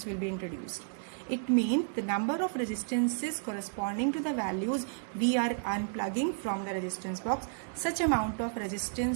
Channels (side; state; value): left; silent; digital silence